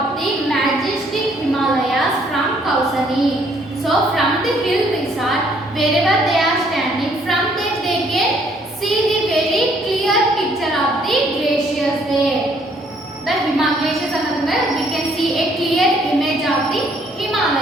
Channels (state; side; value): normal; both; correlation 0.65